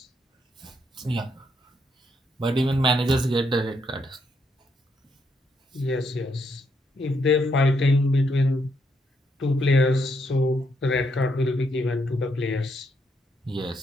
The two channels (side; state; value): both; normal; correlation 0.76